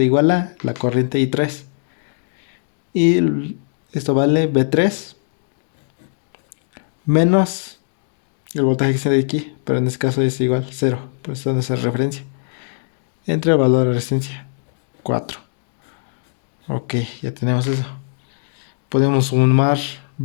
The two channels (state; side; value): silent; right; digital silence